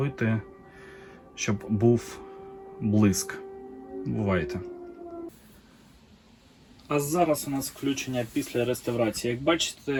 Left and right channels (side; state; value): both; identical; correlation 1.00